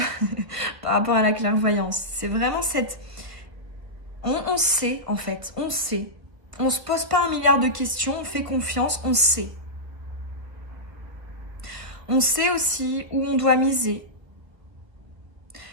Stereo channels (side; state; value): left; late; 1.6 ms